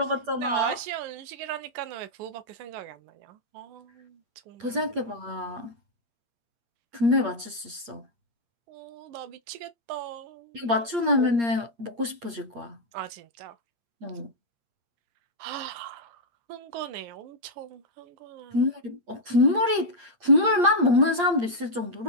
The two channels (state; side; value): late; left; 8.6 ms